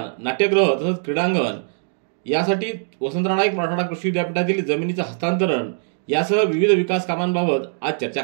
नाट्यगृह तसंच क्रीडांगण यासाठी वसंतराव नाईक मराठवाडा कृषी विद्यापीठातील जमिनीचं हस्तांतरण यासह विविध विकास कामांबाबत आज चर्चा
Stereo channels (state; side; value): silent; left; digital silence